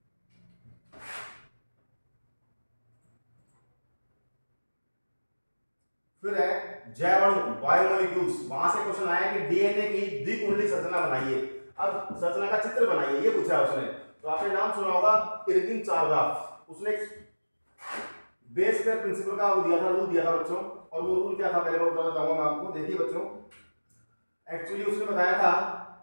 फिर है जैवाणु, बायोमोलिक्यूल्स। वहां से क्वेश्चन आया कि डीएनए की द्विकुंडली संरचना बनाइए। अब संरचना का चित्र बनाइए, ये पूछा है उसने। तो आपने नाम सुना होगा इरविन चारगाफ, उसने बेस पेयर प्रिंसिपल का वो दिया था, रूल दिया था बच्चों। और वो रूल क्या था पहले मैं बताना चाहूंगा मैं आपको। देखिए बच्चों, एक्चुअली उसने बताया था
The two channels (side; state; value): both; inverted; correlation -1.00